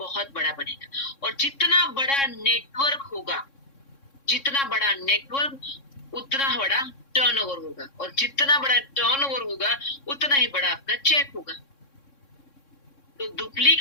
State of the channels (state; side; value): late; right; 3.6 ms